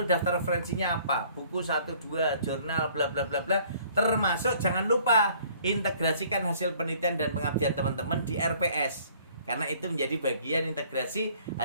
daftar referensinya apa, buku 1, 2, jurnal, bla bla bla bla, termasuk jangan lupa integrasikan hasil penelitian dan pengabdian teman-teman di RPS. Karena itu menjadi bagian integrasi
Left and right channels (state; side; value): inverted; both; correlation -0.57